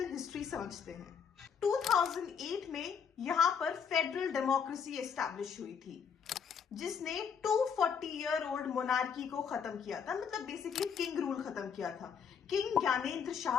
हिस्ट्री समझते हैं। 2008 में यहां पर फेडरल डेमोक्रेसी एस्टैब्लिश हुई थी, जिसने 240 ईयर ओल्ड मोनार्की को खत्म किया था। मतलब बेसिकली किंग रूल खत्म किया था। किंग ज्ञानेंद्र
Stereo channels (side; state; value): right; quieter; 6.9 dB